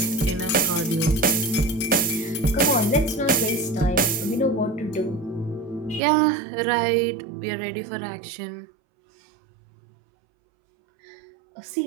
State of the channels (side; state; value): left; drops out; at 6.0 s